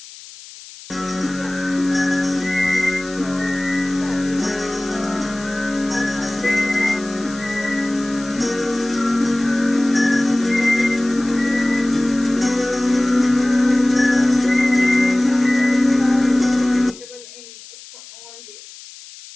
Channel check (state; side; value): noise; left; hiss, 18 dB below the sound